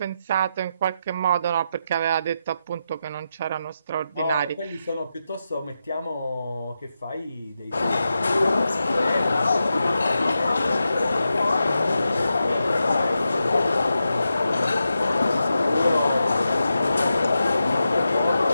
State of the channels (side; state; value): both; inverted; correlation -0.88